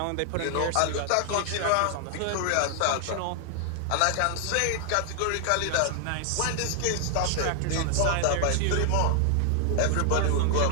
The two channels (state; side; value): different; both; correlation 0.00